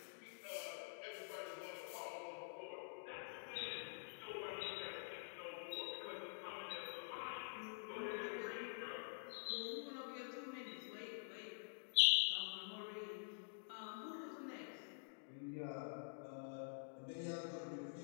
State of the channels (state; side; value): silent; right; digital silence